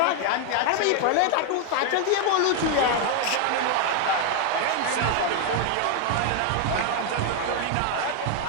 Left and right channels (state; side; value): different; both; correlation 0.00